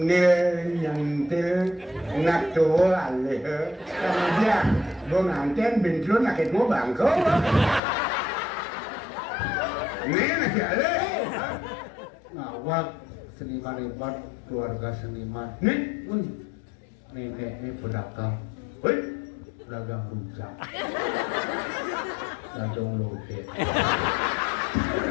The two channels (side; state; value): right; drops out; at 7.8 s